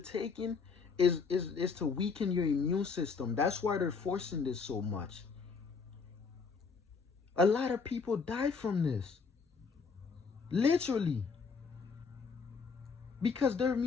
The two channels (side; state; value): right; quieter; 5.1 dB